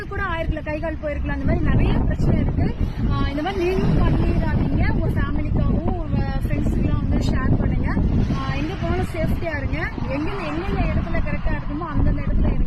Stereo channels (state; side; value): identical; both; correlation 1.00